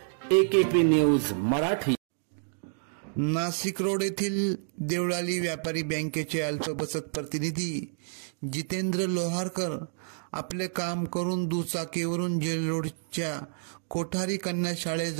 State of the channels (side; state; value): left; silent; digital silence